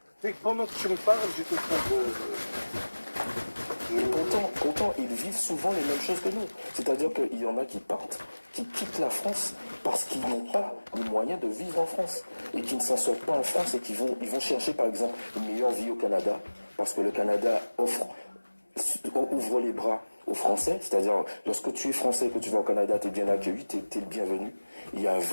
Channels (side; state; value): both; inverted; correlation -1.00